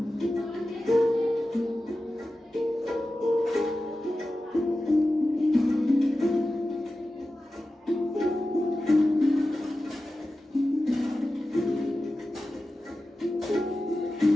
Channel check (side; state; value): both; normal; correlation 0.94